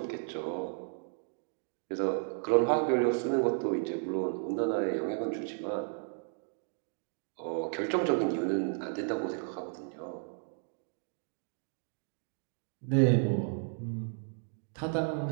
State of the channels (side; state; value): left; silent; 55 dB below the other